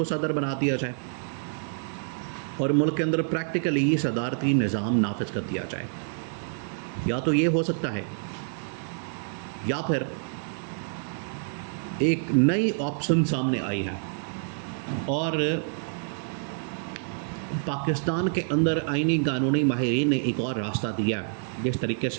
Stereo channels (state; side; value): silent; left; digital silence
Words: सदर बना दिया जाए और मुल्क के अंदर प्रैक्टिकली सदारती निज़ाम नाफिज कर दिया जाए। या तो ये हो सकता है, या फिर एक नई ऑप्शन सामने आई है और पाकिस्तान के अंदर आइनी कानूनी माहिरीन ने एक और रास्ता दिया, जिस तरीके